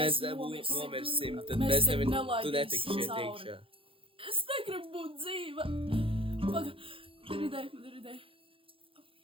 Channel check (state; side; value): late; left; 0.26 ms